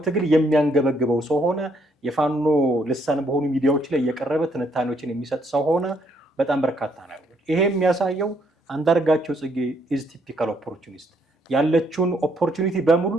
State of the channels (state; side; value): normal; both; correlation 0.70